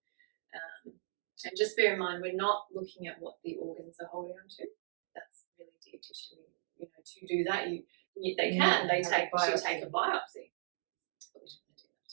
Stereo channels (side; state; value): left; silent; digital silence